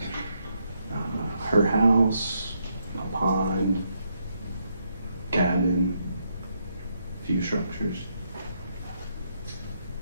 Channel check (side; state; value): both; inverted; correlation -0.78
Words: Her house, a pond, cabin, few structures.